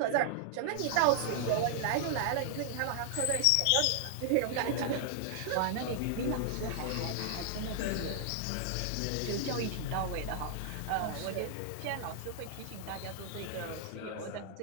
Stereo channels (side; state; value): both; different; correlation -0.01